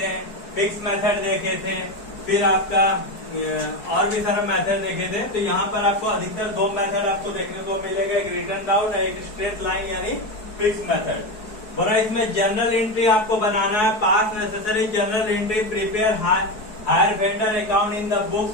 थे, फिक्स मेथड देखे थे, फिर आपका और भी सारा मेथड देखे थे। तो यहाँ पर आपको अधिकतर 2 मेथड आपको देखने को मिलेगा, एक रिटर्न डाउन और एक स्ट्रेट लाइन यानी फिक्स मेथड। बोला इसमें जनरल एंट्री आपको बनाना है। Pass necessary general entry prepare hire vendor account in the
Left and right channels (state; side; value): late; right; 4.7 ms